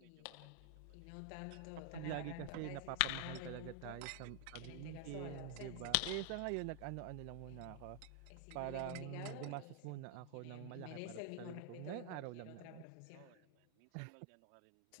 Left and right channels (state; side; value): different; both; correlation 0.00